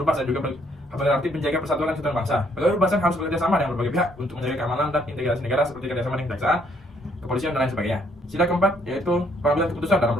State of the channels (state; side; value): normal; both; correlation 0.68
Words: rupasan juga berarti menjaga persatuan dan kesatuan bangsa. Pegawai rupasan harus bekerja sama dengan berbagai pihak untuk menjaga keamanan dan integrasi negara seperti kerjasama dengan kejaksaan, kepolisian, dan lain sebagainya. Sila keempat yaitu pengambilan keputusan dalam